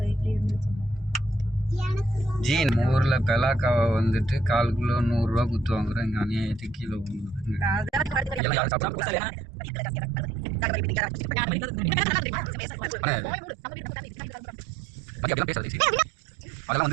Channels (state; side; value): drops out; left; at 8.4 s